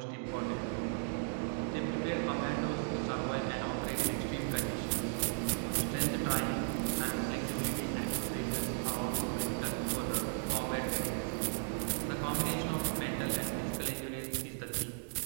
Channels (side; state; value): left; silent; digital silence